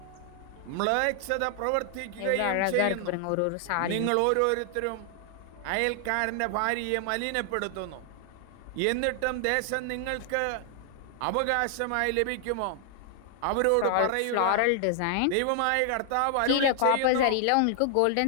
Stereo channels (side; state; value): both; different; correlation 0.00